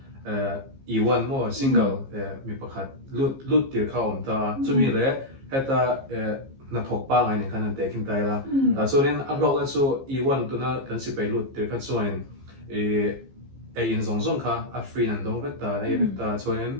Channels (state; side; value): late; left; 15 ms